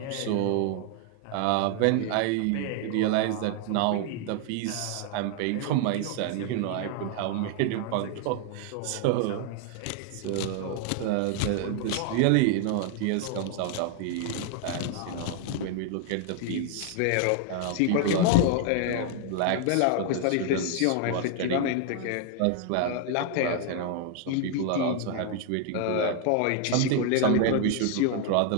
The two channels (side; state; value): both; different; correlation 0.00